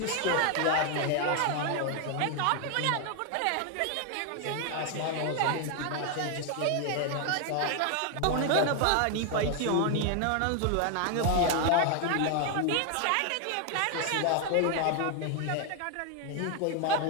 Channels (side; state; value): both; different; correlation 0.01